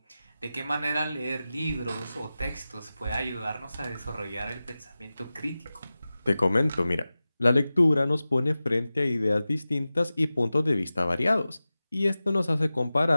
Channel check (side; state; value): both; inverted; correlation -0.96